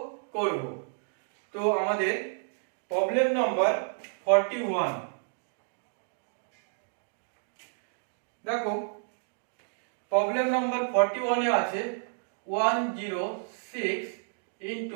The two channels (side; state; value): left; silent; digital silence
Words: করব। তো আমাদের প্রবলেম নাম্বার 41। দেখো প্রবলেম নাম্বার 41 এ আছে 106